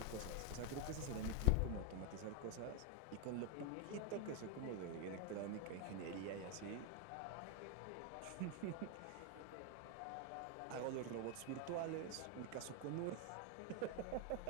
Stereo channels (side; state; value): both; different; correlation 0.01